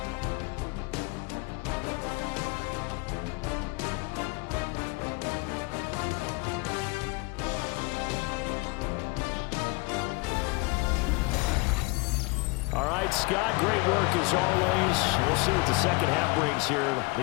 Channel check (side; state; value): right; quieter; 27.0 dB